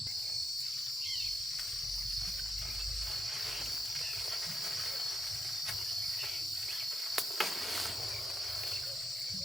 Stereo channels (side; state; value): both; normal; correlation 0.82